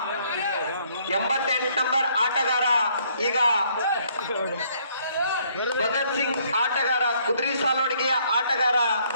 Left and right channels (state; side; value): inverted; both; correlation -0.66